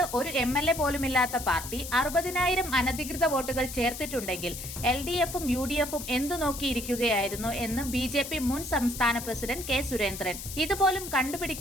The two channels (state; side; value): noise; left; hiss, 9 dB below the sound